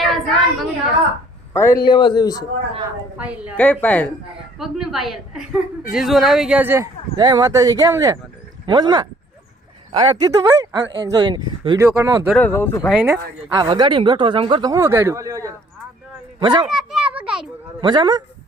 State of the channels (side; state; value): both; normal; correlation 0.59